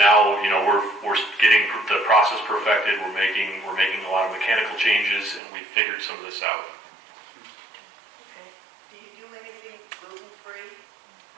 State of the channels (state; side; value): drops out; left; at 5.4 s